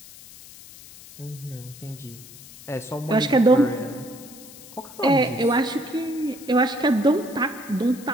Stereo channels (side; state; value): left; noise; hiss, 18 dB below the sound